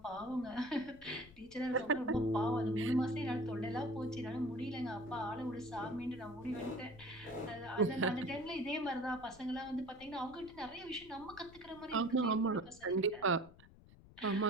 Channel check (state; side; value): noise; left; rumble, 21 dB below the sound